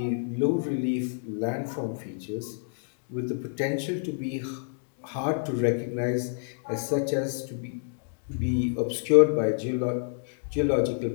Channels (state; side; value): silent; right; digital silence